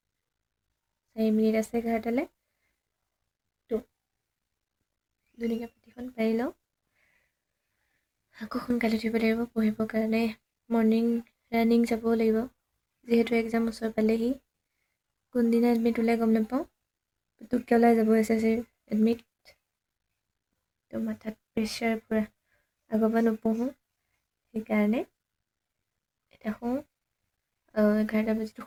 4 মিনিট আছে 11টালৈ তো ধুনীয়াকৈ পাতিখন পাৰি লওঁ আকৌ সোনকালে উঠিব লাগিব পঢ়িবৰ কাৰণে মৰ্ণিং ৰানিং যাব লাগিব যিহেতু এক্সাম ওচৰ পালেহি কোনদিনা এডমিট ওলাই গম নাপাওঁ পুতুককৈ ওলাই যাব SSC এডমিট তো মাথাত প্ৰেছাৰ পূৰা আগৰ পৰা নপঢ়োঁ সেইকাৰণে এতিয়া শুওঁ 11টা বাজিতো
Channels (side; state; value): both; identical; correlation 1.00